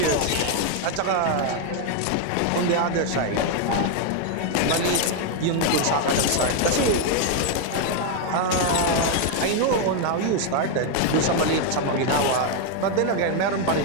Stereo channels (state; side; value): different; both; correlation 0.01